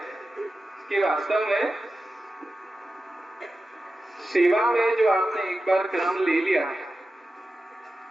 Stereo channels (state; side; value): normal; both; correlation 0.93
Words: कि वास्तव में सेवा में जो आपने एक बार क्रम ले लिया,